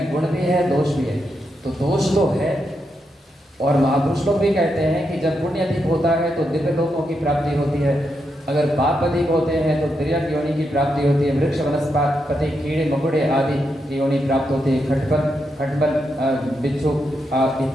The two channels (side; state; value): both; normal; correlation 0.83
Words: गुण भी है, दोष भी है। तो दोष तो है, और महापुरुष लोग भी कहते हैं कि जब पुण्य अधिक होता है तो दिव्य लोकों की प्राप्ति होती है, अगर पाप अधिक होते हैं तो तिर्यक योनि की प्राप्ति होती है, वृक्ष वनस्पति कीड़े मकुड़े आदि की योनि प्राप्त होती है, खटपल बिच्छू